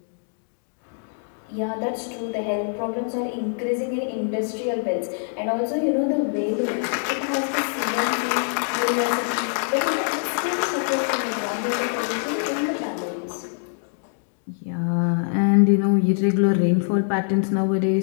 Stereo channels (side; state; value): right; silent; 62 dB below the other